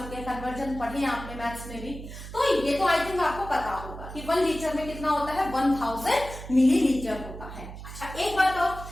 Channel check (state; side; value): noise; right; hum, 12 dB below the sound